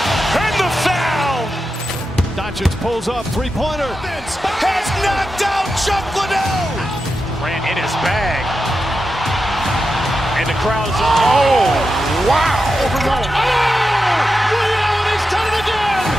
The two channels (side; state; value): both; normal; correlation 0.89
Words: and the foul. Doncic pulls up, three-pointer. Has knocked out Chuck Liddell. Grant in his bag. And the crowd's, oh, wow. Reality's done it again.